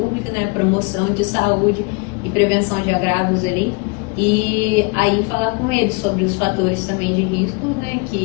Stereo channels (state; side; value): quieter; right; 29.8 dB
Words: né, promoção de saúde e prevenção de agravos ali, e aí falar com eles sobre os fatores também de risco, né,